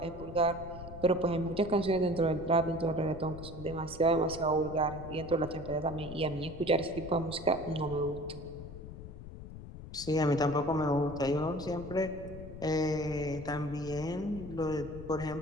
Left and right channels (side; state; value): left; noise; rumble, 12 dB below the sound